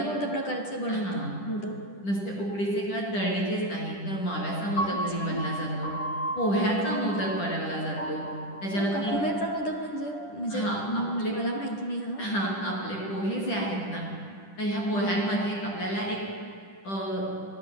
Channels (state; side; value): late; right; 10 ms